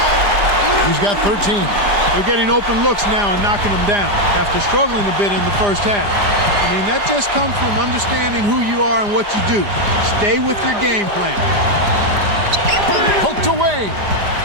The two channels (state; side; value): late; left; 4.9 ms